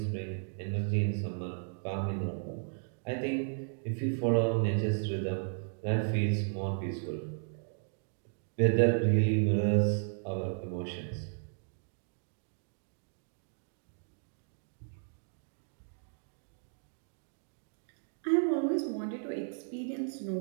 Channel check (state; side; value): silent; left; digital silence